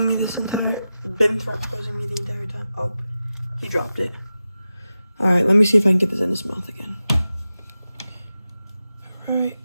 me the entire time. Oh, he dropped it. All right, let me see if I can get this in his mouth again. All right.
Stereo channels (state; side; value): inverted; both; correlation -0.93